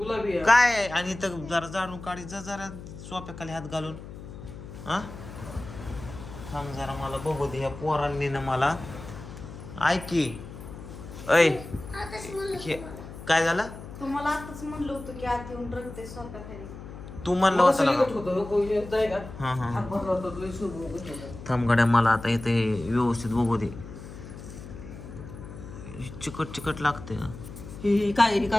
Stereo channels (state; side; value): noise; left; hum, 13 dB below the sound